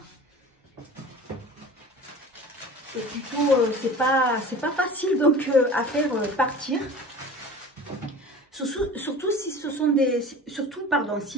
c'est plutôt... c'est pas facile donc à faire partir. Surtout si ce sont des... Surtout, pardon,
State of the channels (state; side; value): normal; both; correlation 0.39